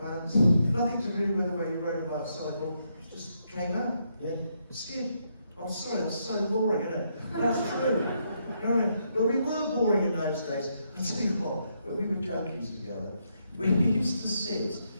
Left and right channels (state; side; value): inverted; both; correlation -0.78